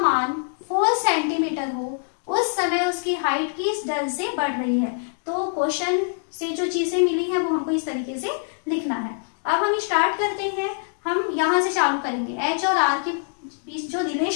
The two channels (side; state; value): right; silent; digital silence